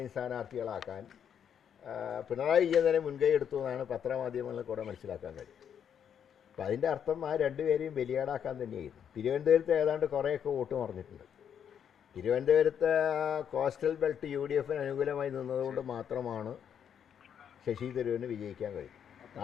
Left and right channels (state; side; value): quieter; right; 8.4 dB